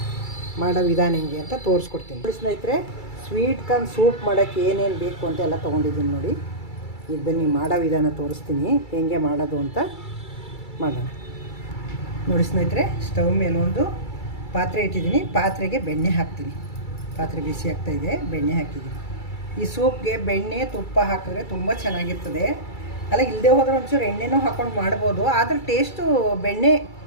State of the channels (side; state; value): right; late; 2.3 ms